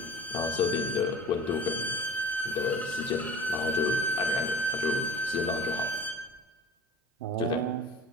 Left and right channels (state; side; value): normal; both; correlation 0.41